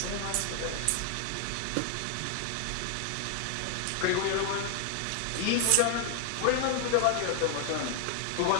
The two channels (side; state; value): both; different; correlation 0.00